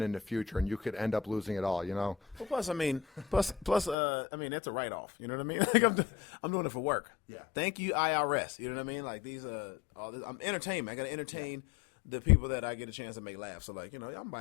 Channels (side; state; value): right; drops out; at 4.0 s